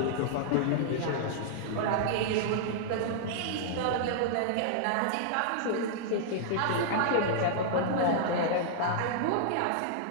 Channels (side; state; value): both; different; correlation -0.01